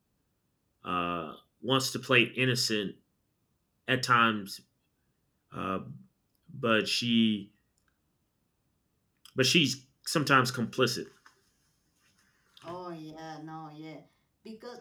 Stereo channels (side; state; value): both; identical; correlation 1.00